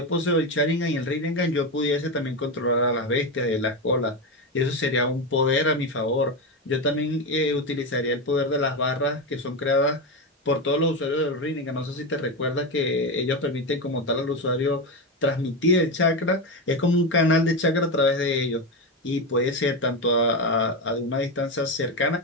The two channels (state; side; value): normal; both; correlation 0.14